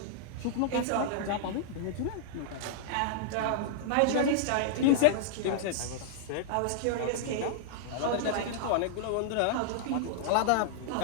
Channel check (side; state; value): both; different; correlation -0.01